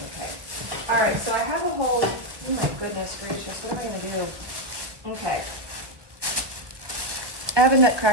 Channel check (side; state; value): left; late; 1.4 ms